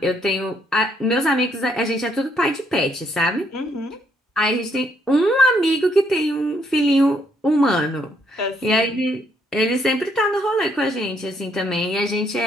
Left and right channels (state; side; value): normal; both; correlation 0.71